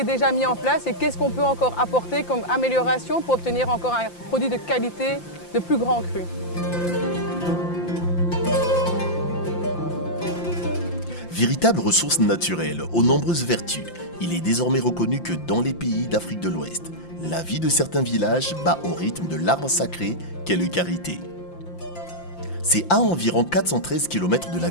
déjà mis en place et qu'est-ce qu'on peut encore apporter comme amélioration pour obtenir encore un produit de qualité de plus grand cru. Véritable ressource naturelle aux nombreuses vertus, il est désormais reconnu que dans les pays d'Afrique de l'Ouest, la vie de certains villages bat au rythme de l'arbre sacré qu'est le karité. C'est à environ 413 km de la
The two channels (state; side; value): late; right; 5.8 ms